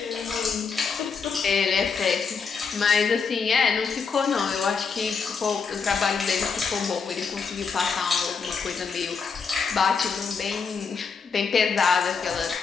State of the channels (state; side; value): quieter; right; 5.5 dB